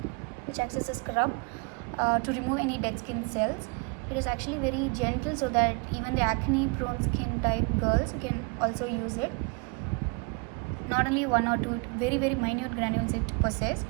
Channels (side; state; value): left; quieter; 32.3 dB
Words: to remove any dead skin cells. It is actually very gentle, so that even the acne prone skin type girls, you can also use it. Not only one or two, very minute granules it possesses,